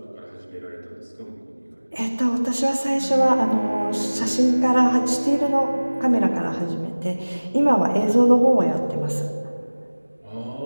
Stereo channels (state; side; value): inverted; both; correlation -1.00